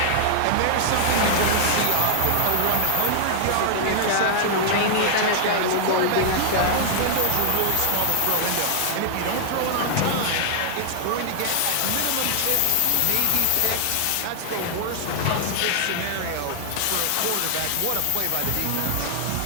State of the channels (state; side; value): different; both; correlation -0.01